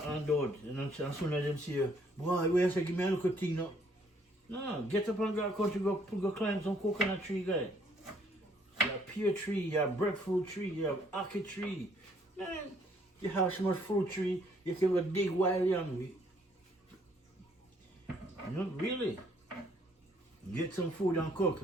And as soon as them see, boy, where say, give me a little thing now. No, get up and go country, go climb some coconut tree, guy. You have pear tree, you have breadfruit tree, you have ackee tree. Man, you have so much fruit tree, you can go dig wild young. You know, really. Get some food and cook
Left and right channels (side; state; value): both; normal; correlation 0.65